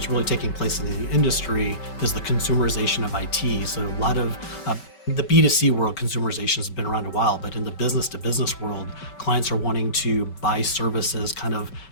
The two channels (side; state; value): right; late; 5.3 ms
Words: really taking place in the industry, is the consumerization of IT. So a lot of the B2C world, consumerization has been around a while, but in the business to business world, clients are wanting to buy services, kind of